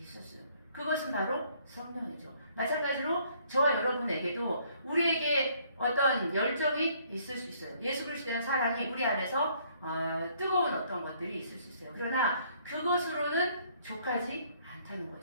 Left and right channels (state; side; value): inverted; both; correlation -0.64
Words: 그것은 바로 성령이죠. 마찬가지로 저와 여러분에게도 우리에게 어떤 열정이 있을 수 있어요. 예수 그리스도에 대한 사랑이 우리 안에서 뜨거운 어떤 것들이 있을 수 있어요. 그러나 그것으로는 족하지 않다는